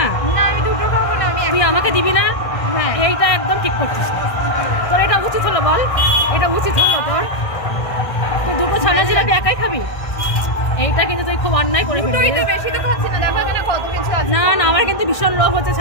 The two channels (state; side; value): late; right; 1.5 ms